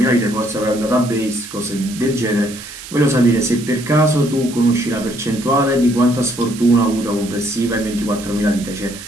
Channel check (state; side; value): noise; right; hiss, 14 dB below the sound